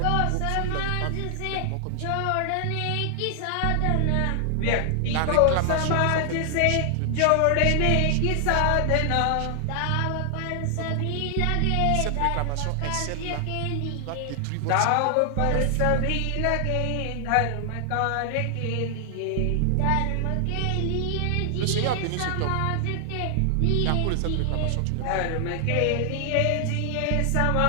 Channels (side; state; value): both; different; correlation 0.00